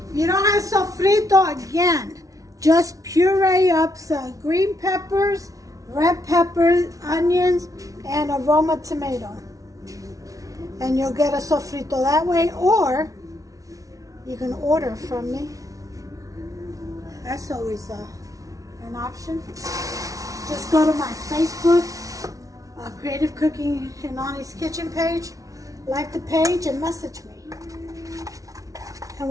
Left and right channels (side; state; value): left; late; 0.17 ms